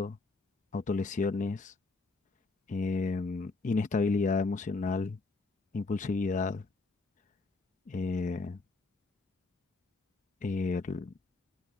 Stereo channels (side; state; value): right; quieter; 3.6 dB